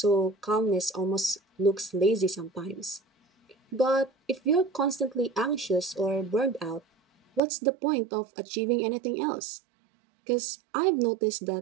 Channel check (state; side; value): drops out; left; at 7.4 s